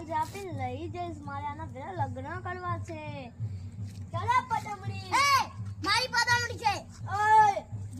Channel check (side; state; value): both; identical; correlation 1.00